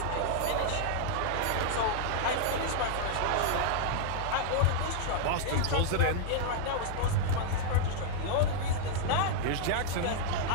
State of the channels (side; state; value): both; different; correlation -0.01